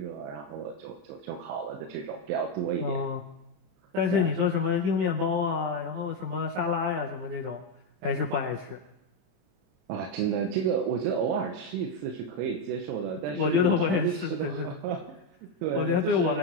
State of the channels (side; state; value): left; late; 27 ms